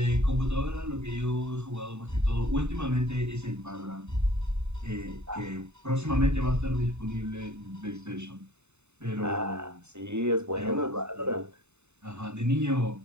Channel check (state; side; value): late; left; 0.82 ms